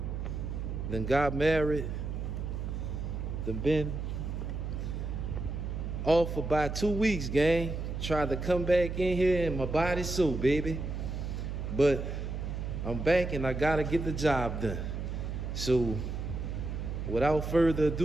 then got married, then been off for about 2 weeks, gang. Tried to come back in here and my body's so, baby. But I'm back and I gotta get the job done. So without further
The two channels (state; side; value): noise; right; hum, 4 dB below the sound